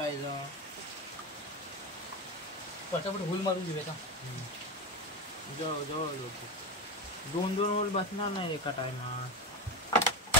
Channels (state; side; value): normal; both; correlation 0.17